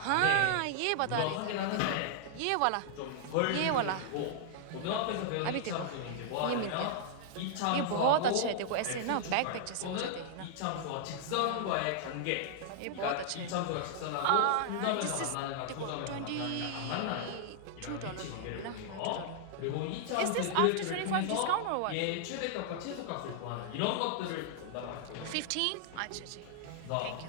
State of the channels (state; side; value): different; both; correlation -0.01